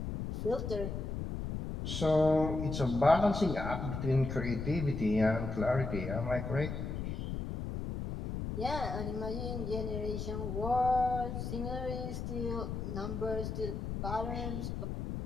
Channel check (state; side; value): noise; left; rumble, 4 dB below the sound